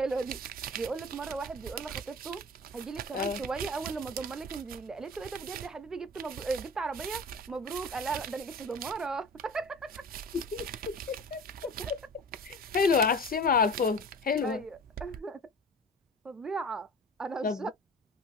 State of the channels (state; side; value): normal; both; correlation 0.38